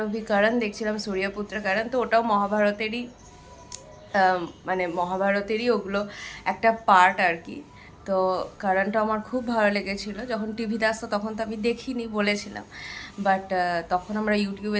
অভি করণ দেখছিলাম, সূর্যপুত্র করণ, তো ওটাও মহাভারতেরই মানে মহাভারতেরই ওগুলো একটা পার্ট আর কি। তো কারণটা আমার খুব ভালো লেগেছিলো। যখন টিভিতে আসতো তখন তো আমি দেখিনি, বলেছিলাম, বাট তখন আমরা ইউটিউবে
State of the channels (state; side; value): identical; both; correlation 1.00